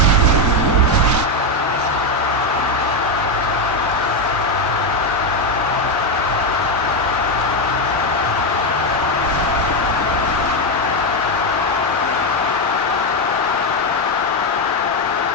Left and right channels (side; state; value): both; normal; correlation 0.07